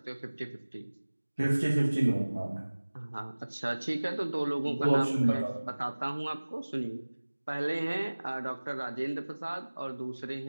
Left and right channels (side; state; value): both; inverted; correlation -1.00